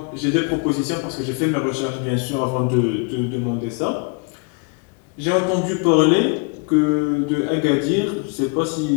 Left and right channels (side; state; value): right; quieter; 34.3 dB